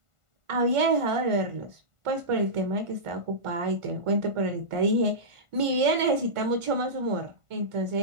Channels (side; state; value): left; late; 1.5 ms